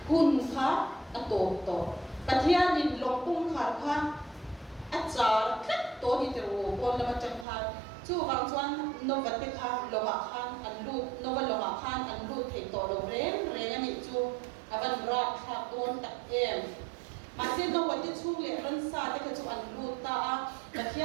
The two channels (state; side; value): drops out; left; at 7.5 s